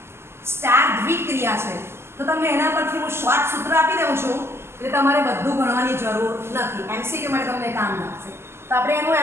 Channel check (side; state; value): left; late; 0.12 ms